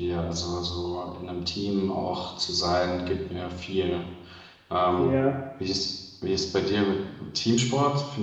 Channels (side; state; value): both; identical; correlation 1.00